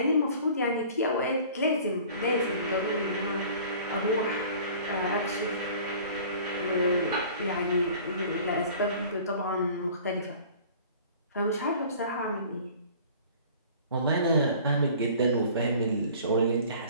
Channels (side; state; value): both; inverted; correlation -0.47